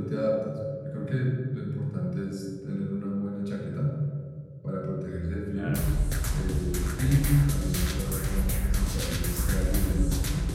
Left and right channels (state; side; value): identical; both; correlation 1.00